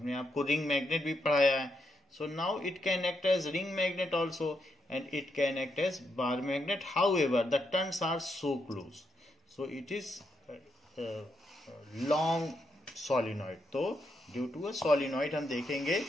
आपको रिंग मैग्नेट भी पढ़ाया है। So now it can act as ring magnet also and it can act as bar magnet, however the turns are so close, so it is long solenoid. तो due to a solenoid हम देखेंगे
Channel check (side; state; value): both; normal; correlation 0.80